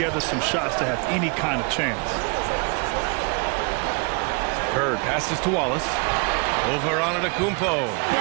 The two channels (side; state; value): left; quieter; 34.1 dB